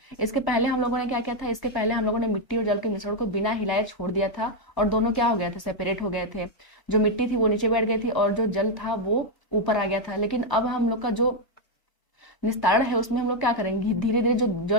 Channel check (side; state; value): right; late; 1.0 ms